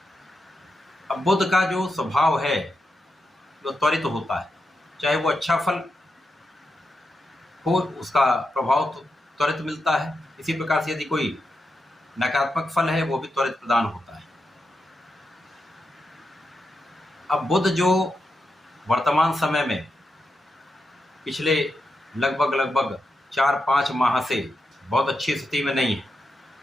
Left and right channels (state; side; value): normal; both; correlation 0.86